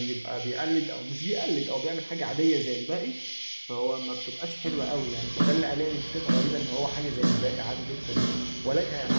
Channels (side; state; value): both; inverted; correlation -1.00